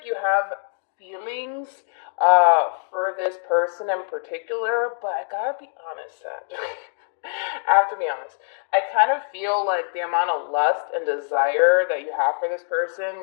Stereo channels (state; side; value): silent; right; digital silence